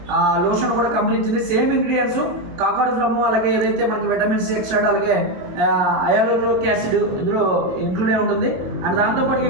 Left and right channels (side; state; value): left; late; 22 ms